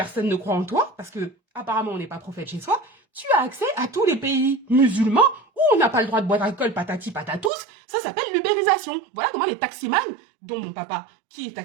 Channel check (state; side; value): drops out; left; at 7.5 s